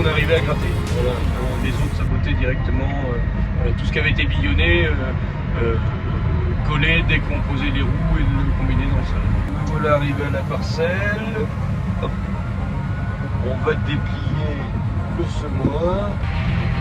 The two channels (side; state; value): both; identical; correlation 1.00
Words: on arrivait à gratter. Voilà. Les autres sabotaient directement tout ce qui avait été billonné, collé dès qu'on posait les roues et le combiné dans le sol. Voilà, arrivé à la parcelle. Hop. On va déplier le semoir.